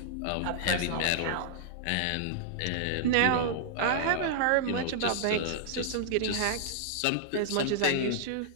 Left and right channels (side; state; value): both; different; correlation -0.01